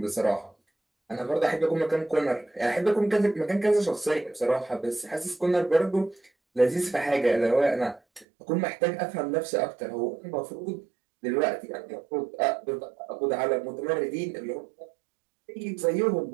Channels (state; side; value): drops out; left; at 8.2 s